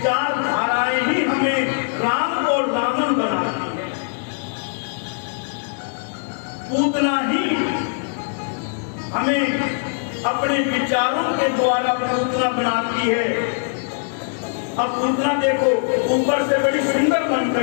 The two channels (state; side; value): silent; right; 65 dB below the other